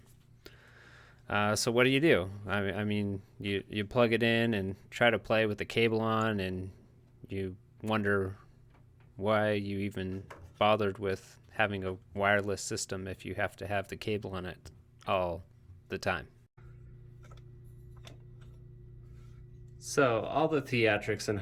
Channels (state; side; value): identical; both; correlation 1.00